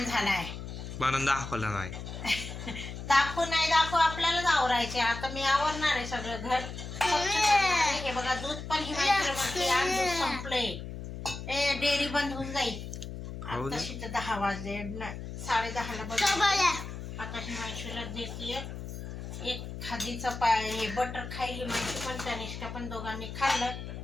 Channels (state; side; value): noise; left; hum, 8 dB below the sound